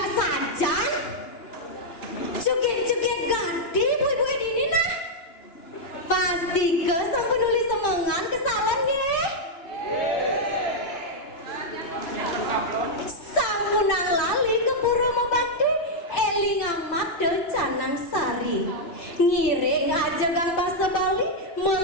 Ngiring aja gang bahasa Bali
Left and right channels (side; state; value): right; late; 2.8 ms